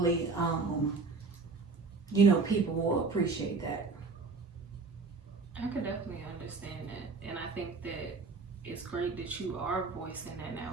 you know, people will appreciate that. I could definitely understand that. And I think that it's great that you are voicing that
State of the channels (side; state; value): left; quieter; 4.2 dB